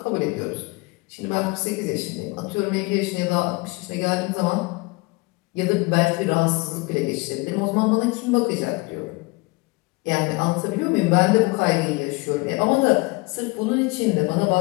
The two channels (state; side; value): quieter; right; 25.3 dB